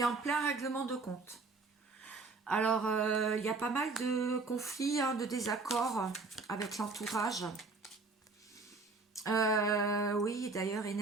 est en plein règlement de compte. Alors, il y a pas mal de conflits, hein, de désaccords avec l'entourage. Oui, d'ailleurs,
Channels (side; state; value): left; quieter; 3.9 dB